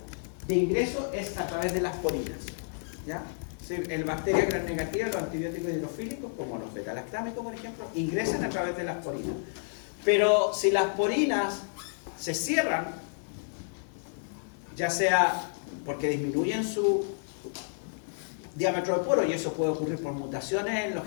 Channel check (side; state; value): right; silent; digital silence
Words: de ingreso es a través de las porinas, ¿ya? En bacteria gram negativa, los antibióticos hidrofílicos, como los beta-lactámicos, por ejemplo, ingresan a través de las porinas. Pero si las porinas se cierran, ya sea porque disminuyen su diámetro de poro, y eso puede ocurrir por mutaciones en los